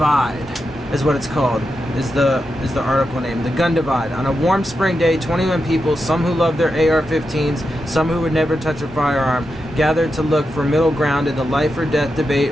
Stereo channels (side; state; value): both; normal; correlation 0.88